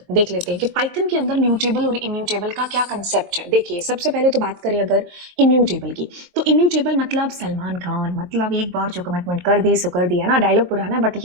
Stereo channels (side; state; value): left; late; 23 ms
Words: देख लेते हैं कि पाइथन के अंदर म्यूटेबल और इम्यूटेबल का क्या कंसेप्ट है। देखिए, सबसे पहले तो बात करें अगर इम्यूटेबल की, तो इम्यूटेबल मतलब सलमान खान, मतलब एक बार जो कमिटमेंट कर दी सो कर दिया ना। डायलॉग पुराना है बट